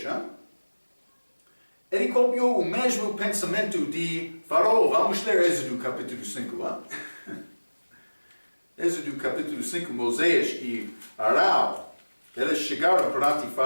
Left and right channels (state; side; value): inverted; both; correlation -1.00